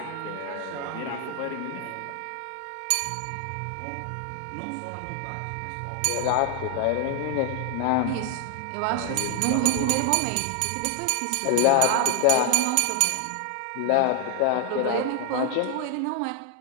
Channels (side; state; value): both; different; correlation 0.00